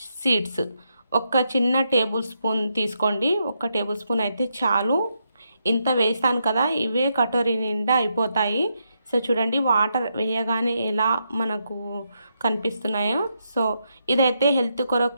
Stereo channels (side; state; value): both; inverted; correlation -0.81